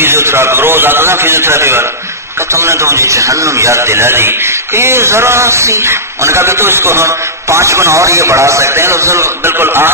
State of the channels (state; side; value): normal; both; correlation -0.15